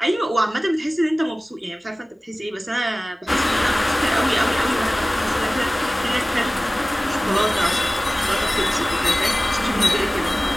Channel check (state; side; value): normal; both; correlation 0.97